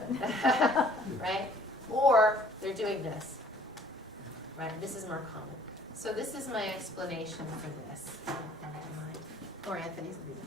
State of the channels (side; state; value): both; normal; correlation 0.56